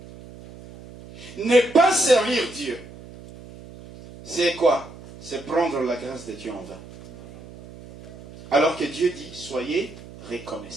Ne pas servir Dieu, c'est quoi? C'est prendre la grâce de Dieu en vain. Alors que Dieu dit, soyez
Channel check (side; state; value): right; noise; hum, 17 dB below the sound